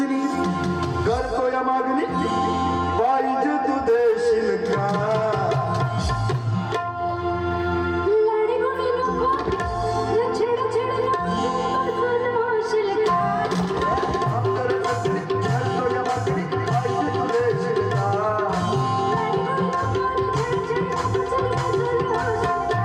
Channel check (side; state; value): both; identical; correlation 1.00